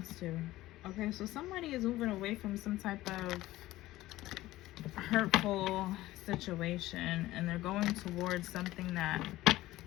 to. Okay, so somebody is moving away from some type of hurtful situation, and they're going towards something that,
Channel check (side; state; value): right; quieter; 16.6 dB